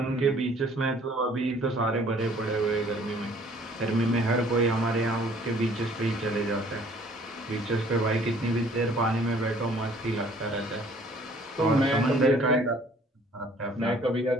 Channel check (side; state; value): both; normal; correlation 0.56